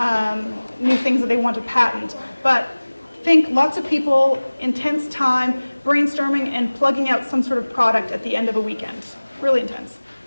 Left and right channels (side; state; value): both; inverted; correlation -1.00